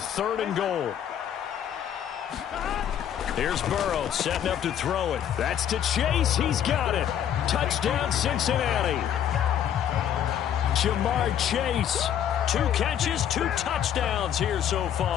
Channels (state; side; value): quieter; right; 9.7 dB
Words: and goal. Here's Burrow setting up to throw it. That's to Chase. He's got it. Touchdown, Cincinnati. Jamar Chase. 2 catches, 2 touchdowns here so